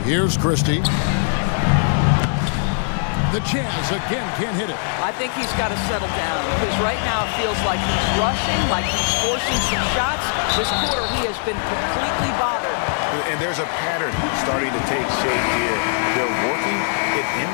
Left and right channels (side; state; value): right; silent; digital silence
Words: Here's Christie. The Jazz again can't hit it. I think he's got to settle down because right now it feels like he's rushing, like he's forcing some shots. This quarter he has been completely bothered. And there's a pattern starting to take shape here. They're working it